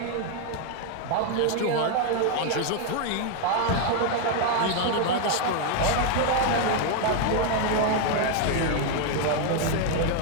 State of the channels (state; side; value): different; both; correlation 0.00